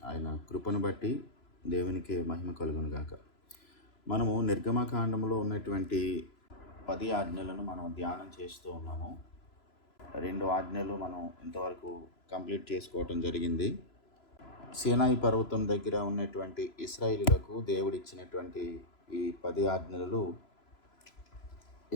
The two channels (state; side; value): late; right; 3.0 ms